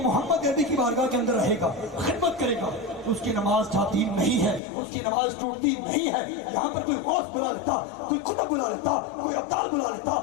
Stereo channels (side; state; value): right; drops out; at 4.6 s